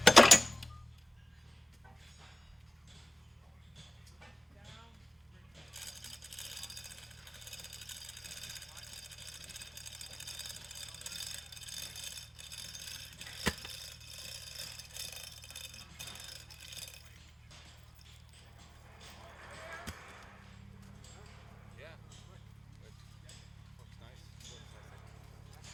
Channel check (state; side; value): normal; both; correlation 0.98